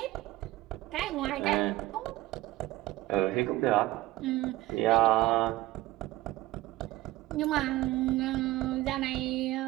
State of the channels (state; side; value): quieter; left; 17.3 dB